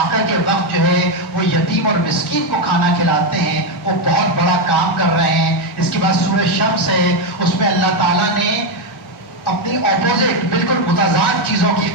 کے وقت جو ہے وہ یتیم اور مسکین کو کھانا کھلاتے ہیں، وہ بہت بڑا کام کر رہے ہیں۔ اس کے بعد سورہ شمس ہے، اس میں اللہ تعالیٰ نے اپنی اپوزٹ بالکل متضاد چیزوں کی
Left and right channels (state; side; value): normal; both; correlation 0.05